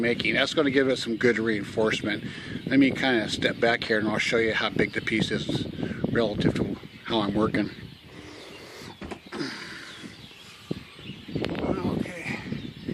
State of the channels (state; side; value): identical; both; correlation 1.00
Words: making. That's going to give it some good reinforcement. Let me kind of step back here and I'll show you how big the piece is relative to how I'm working. Okay,